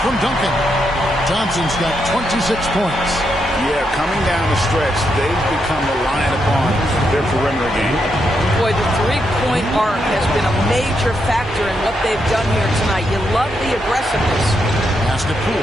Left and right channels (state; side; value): noise; right; hum, 20 dB below the sound